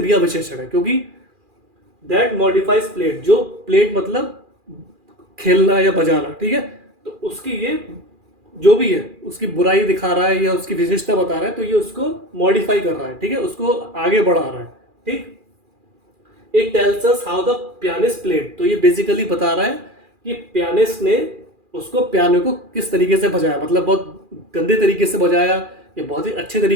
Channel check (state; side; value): late; left; 2.4 ms